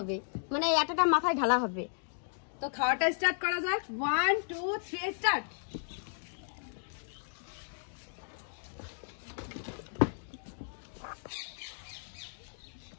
মানে এই আটাটা মাথায় ঢালা হবে। তো খাওয়াটা স্টার্ট করা যাক। 1 2 3 স্টার্ট।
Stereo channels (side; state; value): right; silent; digital silence